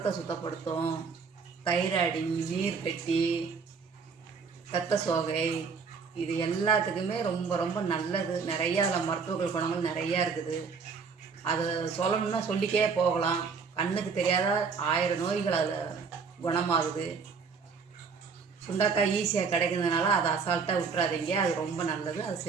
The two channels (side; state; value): left; quieter; 5.4 dB